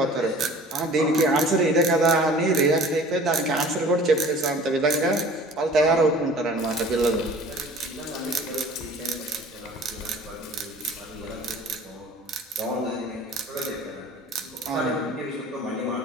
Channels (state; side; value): normal; both; correlation 0.46